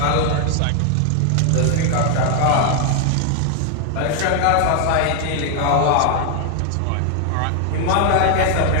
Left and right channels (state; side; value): different; both; correlation 0.00